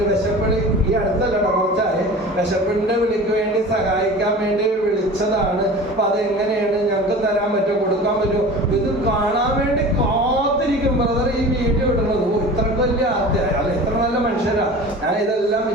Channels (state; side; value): normal; both; correlation 0.38